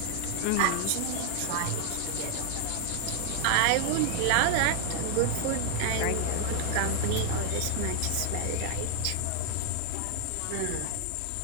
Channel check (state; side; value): different; both; correlation 0.00